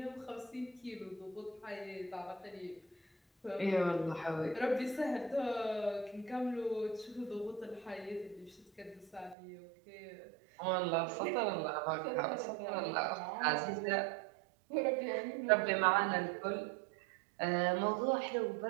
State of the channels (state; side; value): drops out; left; at 9.3 s